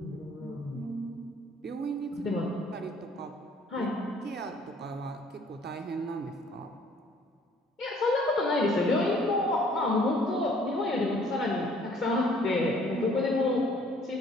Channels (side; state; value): both; normal; correlation 0.58